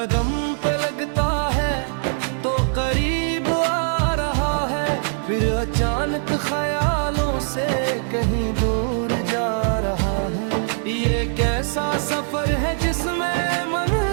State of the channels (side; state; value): left; silent; digital silence